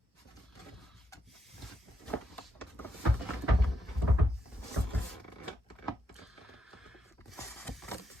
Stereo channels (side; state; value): both; normal; correlation 0.80